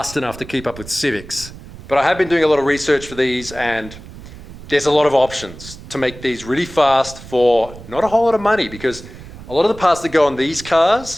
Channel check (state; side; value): noise; right; rumble, 16 dB below the sound